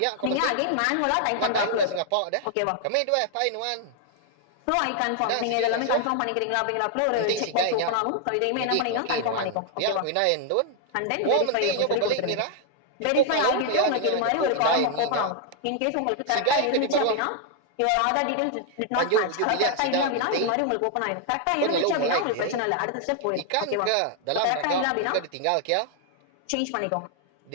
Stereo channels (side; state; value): both; different; correlation 0.00